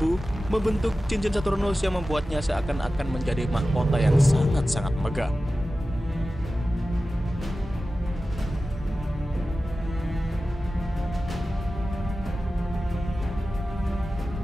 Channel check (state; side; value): normal; both; correlation 0.95